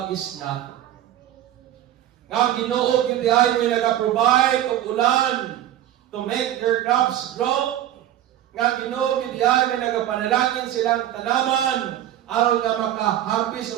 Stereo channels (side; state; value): left; quieter; 12.3 dB